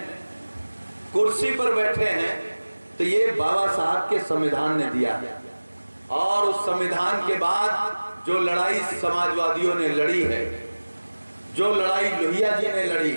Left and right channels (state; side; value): inverted; both; correlation -1.00